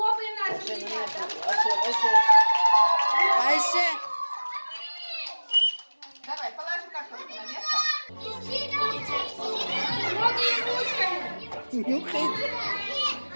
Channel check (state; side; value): inverted; both; correlation -1.00